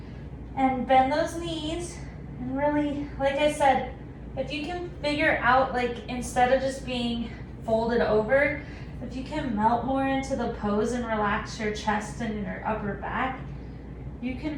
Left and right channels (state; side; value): identical; both; correlation 1.00